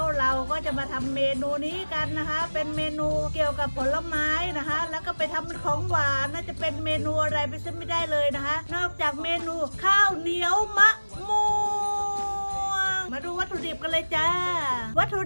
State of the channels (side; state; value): both; inverted; correlation -1.00